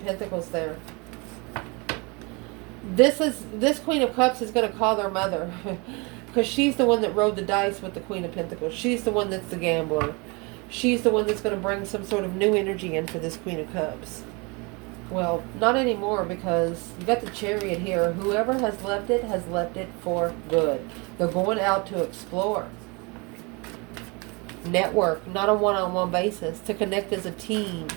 Pentacles there? This Queen of Cups is going to call their mother. Because she's the one that rode the dice with the Queen of Pentacles. She's the one that's the gambler. She's the one that's going to bring some sort of new energy in for this Queen of Cups. Well, not anymore, because you got the Chariot here. Whoever has left it for good. They're going out to explore. Network, not a one-on-one basis. To connect as a team.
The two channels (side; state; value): left; quieter; 29.0 dB